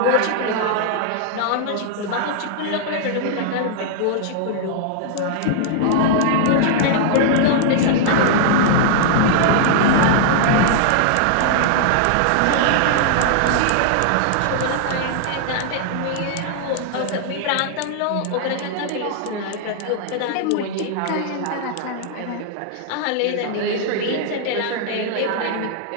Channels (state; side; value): different; both; correlation -0.01